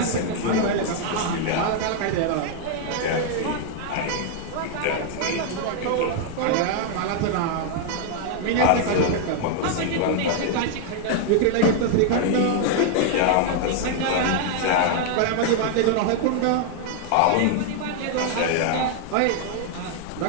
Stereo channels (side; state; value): both; different; correlation 0.00